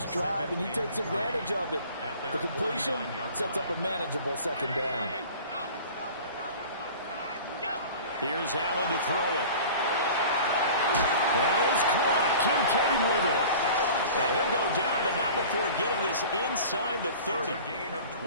drive, and he takes advantage of it. The completion sets up a manageable second down. Here's Allen to throw it. That is caught. Kincaid with it. And he'll go down, but not before getting this inside the 30.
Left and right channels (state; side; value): inverted; both; correlation -0.41